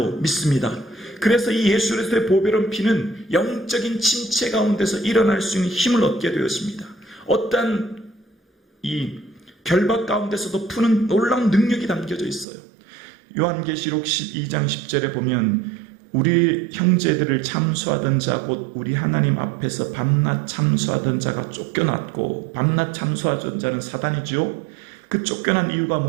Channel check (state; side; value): drops out; left; at 12.5 s